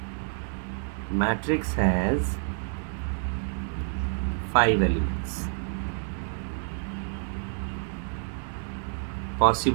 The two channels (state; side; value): silent; left; digital silence